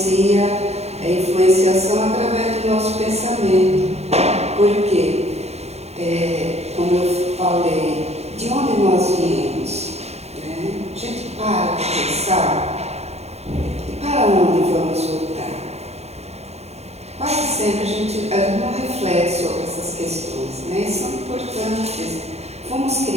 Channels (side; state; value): left; late; 0.31 ms